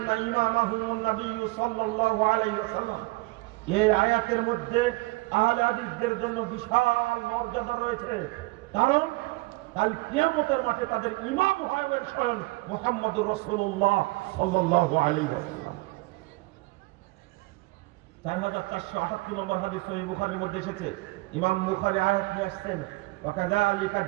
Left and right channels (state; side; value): quieter; left; 24.0 dB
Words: ইমামাহুমুন নবী সাল্লাল্লাহু আলাইহি ওয়াসাল্লাম। এই আয়াতের মধ্যে আহলে হাদিসদের জন্য বিশাল মর্যাদা রয়েছে, কারণ কাল কিয়ামতের মাঠে তাদের ইমাম হবেন স্বয়ং মুহাম্মদুর রাসূলুল্লাহ সাল্লাল্লাহু আলাইহি ওয়াসাল্লাম। 4478 নম্বর হাদিস সহিহ বুখারীর মধ্যে এসেছে। ইমাম বুখারী আয়াত নিয়ে আসছেন, ওয়াকাযালিকা